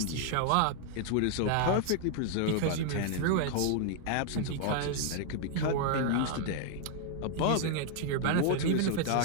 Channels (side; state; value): both; different; correlation 0.00